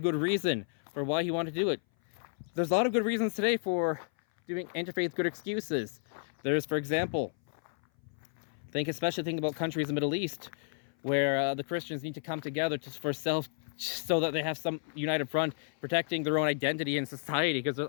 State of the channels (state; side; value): silent; right; 57 dB below the other